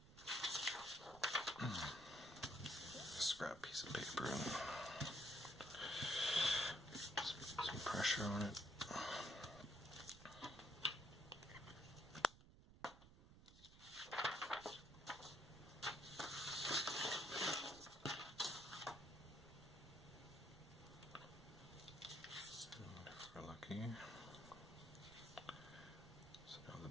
Scrap piece of paper and just put some pressure on it. Lucky. So now the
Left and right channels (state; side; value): noise; right; rumble, 18 dB below the sound